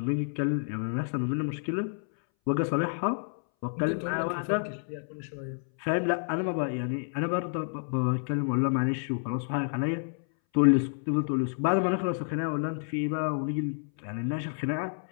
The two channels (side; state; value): right; silent; 58 dB below the other